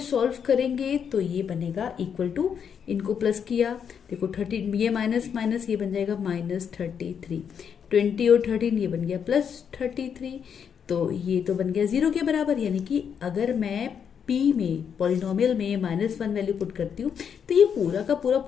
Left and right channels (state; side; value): quieter; right; 7.5 dB